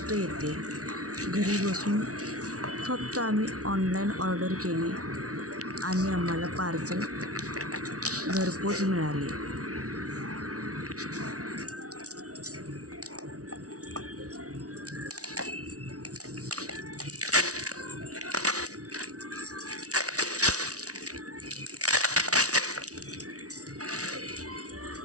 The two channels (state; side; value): late; left; 0.67 ms